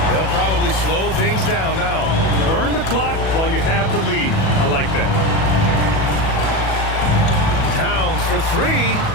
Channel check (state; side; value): late; right; 37 ms